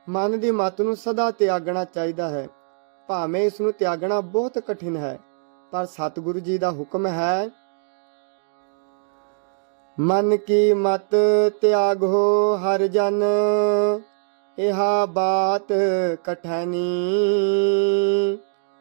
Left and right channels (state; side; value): silent; left; digital silence